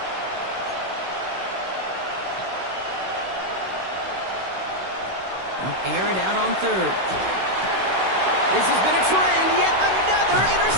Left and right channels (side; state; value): left; late; 16 ms